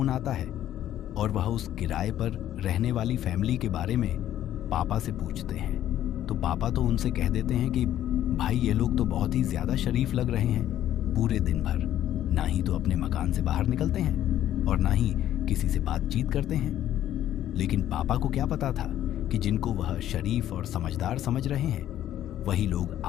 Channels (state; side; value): quieter; right; 12.0 dB